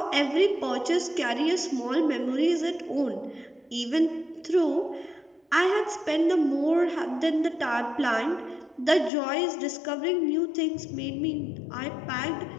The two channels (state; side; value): drops out; right; at 9.1 s